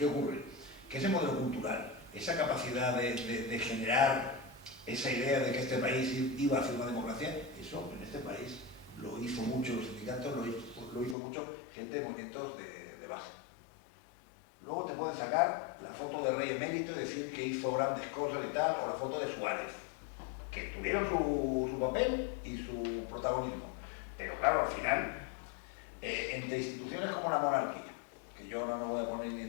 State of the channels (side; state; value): right; drops out; at 11.2 s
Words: ocurre? Que ese modelo cultural, esa capacidad de generar esa idea de que este país iba hacia una democracia, eso en este país lo hizo mucho los sindicatos, lo hizo mucho gente de movimientos de base. Luego te pueden sacar la foto de Rey Emérito y decir que hizo grandes cosas y tal, o la foto de Suárez, que tuvieron su papel y su protagonismo. Pero claro, al final, entre instituciones como la monarquía, que yo no me voy a poner ni